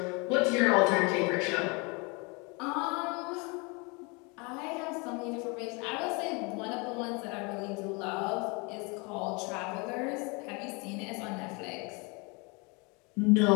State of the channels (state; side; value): quieter; right; 29.8 dB